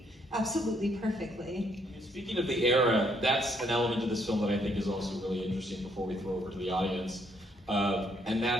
Absolutely perfectly. Speaking of the era, that's an element of this film that I think is also really interesting before we throw over to the audience. And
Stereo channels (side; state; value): both; normal; correlation 0.70